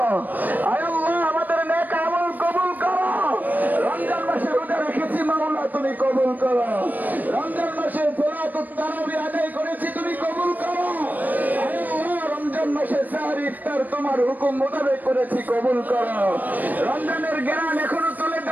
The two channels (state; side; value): late; left; 0.085 ms